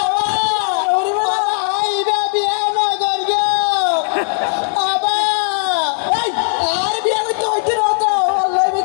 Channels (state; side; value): silent; right; digital silence